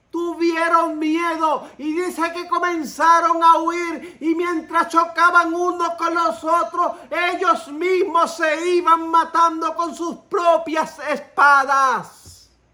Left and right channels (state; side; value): identical; both; correlation 1.00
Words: tuvieron miedo y dice que comenzaron a huir, y mientras chocaban unos con los otros, ellos mismos se iban matando con sus propias espadas.